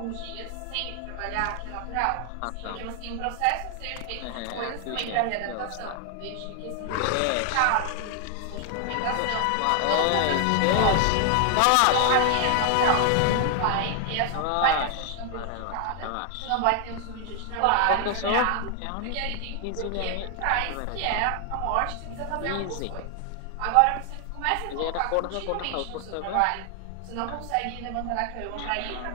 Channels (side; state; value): both; different; correlation 0.00